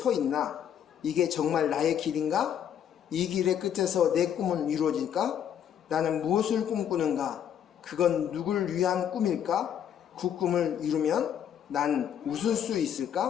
있나? 이게 정말 나의 길인가? 이 길의 끝에서 내 꿈은 이루어질까? 나는 무엇을 꿈꾸는가? 그건 누굴 위한 꿈일까? 그 꿈을 이루면 난 웃을 수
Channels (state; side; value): quieter; right; 9.3 dB